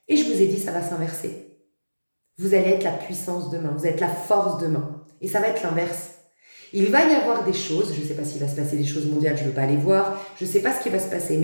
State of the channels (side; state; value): both; inverted; correlation -1.00